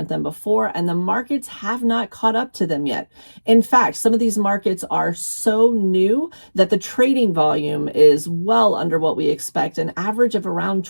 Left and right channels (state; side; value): inverted; both; correlation -1.00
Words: than before, and the markets have not caught up to them yet. In fact, some of these markets are so new that the trading volume is well under what we expect, an average of around